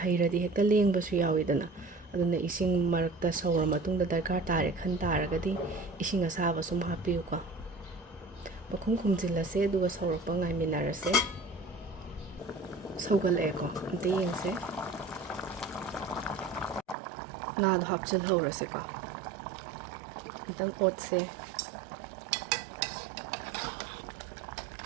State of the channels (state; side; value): drops out; left; at 16.9 s